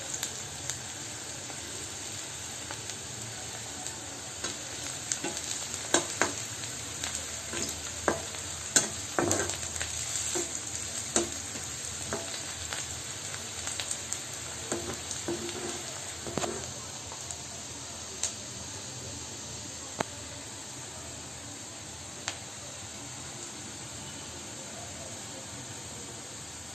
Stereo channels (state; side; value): normal; both; correlation 0.96